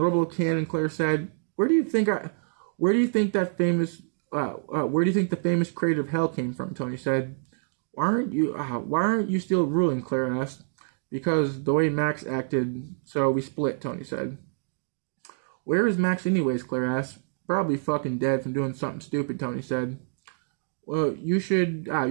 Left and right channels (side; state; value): left; silent; digital silence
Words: cannon, Claire said. Where do you think that famous Where do you think the famous creator of hell came from? Tony said. Why aren't you still ruling? Claire asked. Because the way Max acted, so we split. Tony said. Where is Max anyways? Claire asked. Probably fucking dead from doing something stupid. Tony said. Well, you should